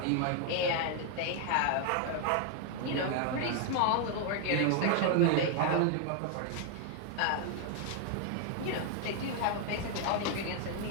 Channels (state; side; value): different; both; correlation 0.00